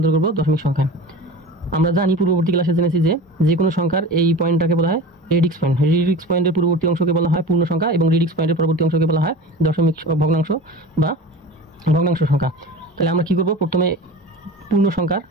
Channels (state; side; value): normal; both; correlation 0.34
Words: করব দশমিক সংখ্যায়। আমরা জানি, পূর্ববর্তী ক্লাসে জেনেছি যে কোনো সংখ্যার এই পয়েন্টটাকে বলা হয় রেডিক্স পয়েন্ট। রেডিক্স পয়েন্টের পূর্ববর্তী অংশকে বলা হয় পূর্ণ সংখ্যা এবং রেডিক্স পয়েন্টের পরবর্তী অংশকে বলা হয় দশমিক ভগ্নাংশ বা ভগ্নাংশ সংখ্যা। তাহলে আমরা কী করব, প্রথমে পূর্ণ সংখ্যার